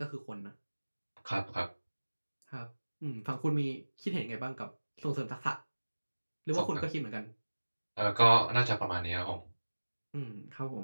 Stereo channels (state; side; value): inverted; both; correlation -1.00